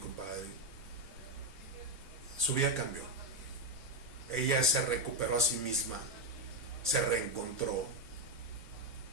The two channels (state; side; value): normal; both; correlation 0.04